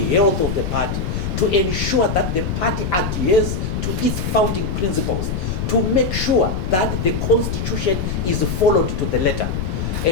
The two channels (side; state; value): left; noise; rumble, 2 dB below the sound